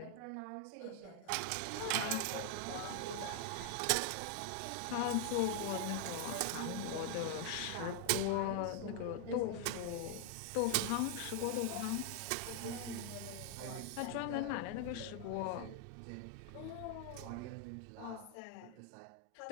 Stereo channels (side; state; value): both; different; correlation 0.00